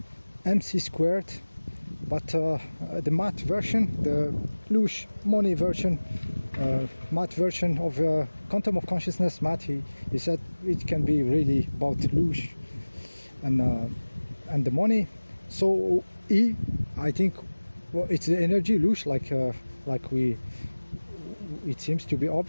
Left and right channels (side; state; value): both; inverted; correlation -1.00